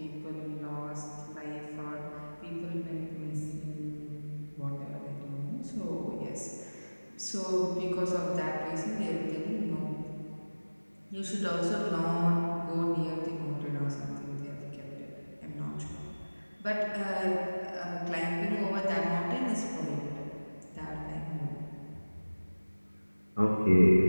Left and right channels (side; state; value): both; inverted; correlation -1.00